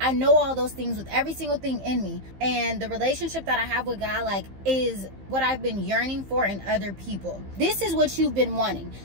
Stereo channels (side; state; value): left; late; 15 ms